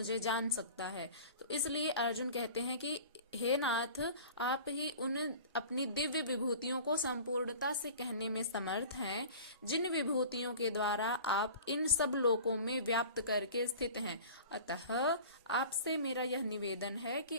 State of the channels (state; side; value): inverted; both; correlation -0.41